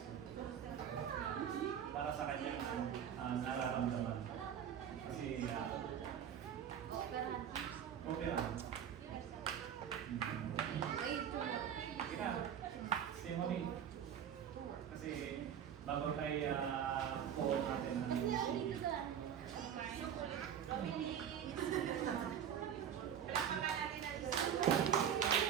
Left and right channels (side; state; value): left; quieter; 8.9 dB